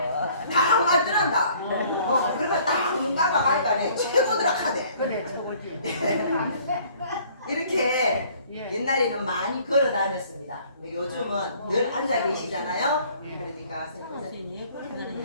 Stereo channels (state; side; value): inverted; both; correlation -0.57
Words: 딱 맞더란다. 그러니까 딱눈 감아 가니까 최고더라 카대. 그래 저거지. 이렇게 예. 옛날에는 많이 걸어 다녔습니다. 근데 요즘은 늘 앉아 계시잖아요. 그러니까